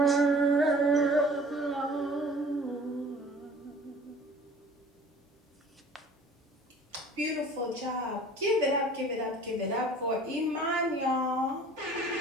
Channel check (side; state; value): both; normal; correlation 0.47